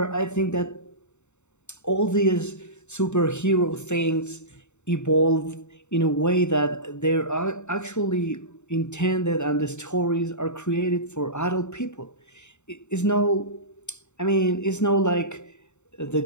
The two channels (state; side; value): late; right; 0.83 ms